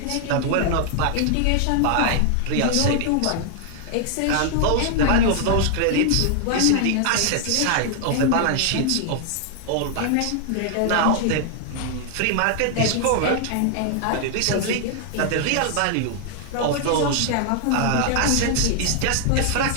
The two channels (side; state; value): both; different; correlation 0.00